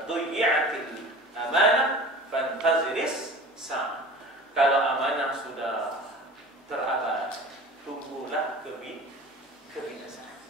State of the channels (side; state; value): both; normal; correlation 0.39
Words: dhuyyatil amanah fantaziris sa. Kalau amanah sudah terabaikan, tunggulah kebinasaan.